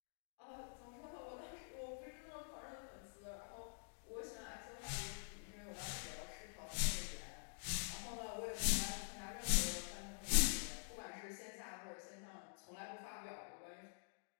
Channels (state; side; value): silent; right; digital silence